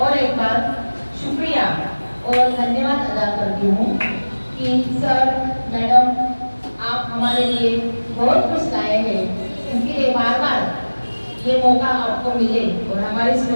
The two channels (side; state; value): both; inverted; correlation -1.00